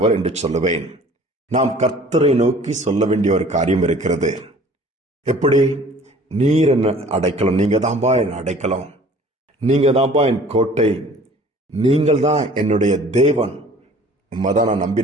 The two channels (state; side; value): normal; both; correlation 0.50